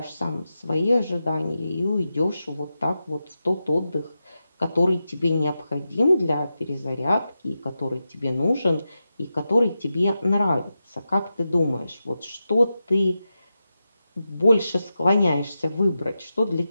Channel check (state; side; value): inverted; both; correlation -0.90